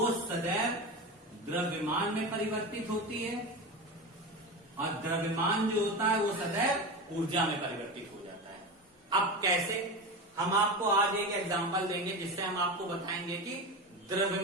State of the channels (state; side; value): normal; both; correlation 0.23